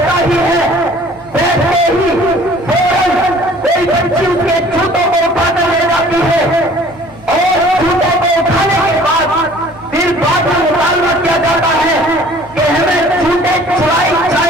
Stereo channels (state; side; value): normal; both; correlation 0.51